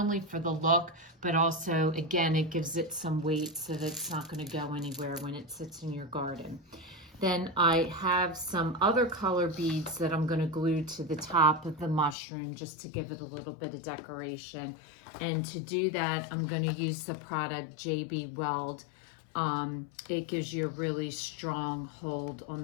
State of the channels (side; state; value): right; drops out; at 12.2 s